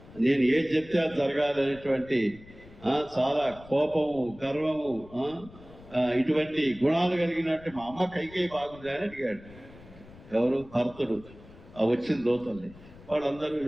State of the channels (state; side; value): noise; left; rumble, 21 dB below the sound